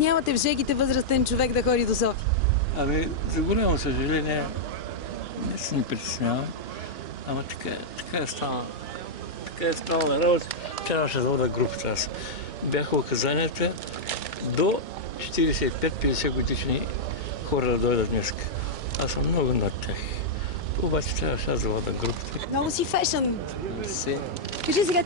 в жегите възрастен човек да ходи до София? Ами, за голямо съжаление, не се ни притеснявам, ама така е станало. Така е станала работа. Трябваше да вода групата аз. Бяха указанията до 45-50 годишни хора да дойдат днес. Аз съм много над тях. Обаче трябваше аз да вода групата. Много си фешън. Си. Кажи сега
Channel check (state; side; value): normal; both; correlation -0.07